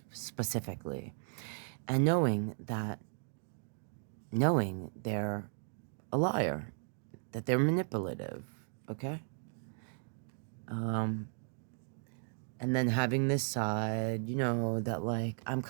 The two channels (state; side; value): silent; left; 54 dB below the other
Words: and knowing they're a liar, that they're manipulative, okay? And then having this side, you know, that like I'm